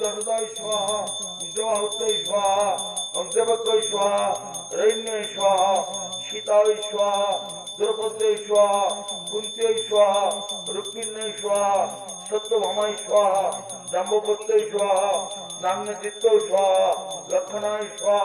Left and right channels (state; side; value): identical; both; correlation 1.00